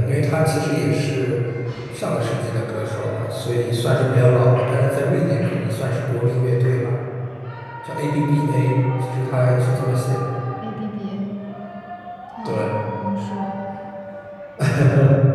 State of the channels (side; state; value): both; identical; correlation 1.00